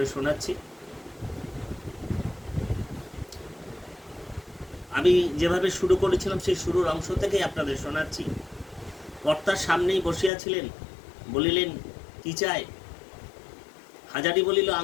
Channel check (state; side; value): drops out; right; at 10.3 s